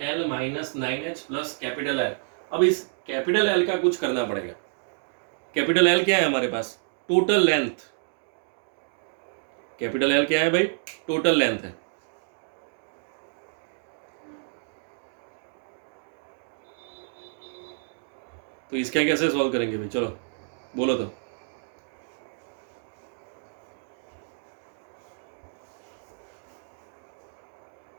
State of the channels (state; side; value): silent; left; digital silence